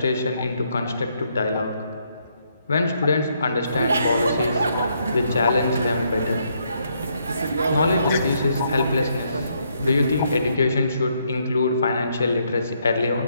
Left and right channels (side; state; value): both; inverted; correlation -0.74